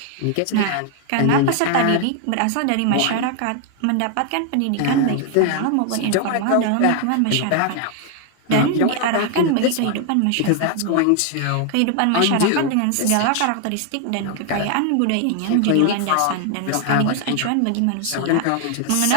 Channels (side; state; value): both; different; correlation 0.00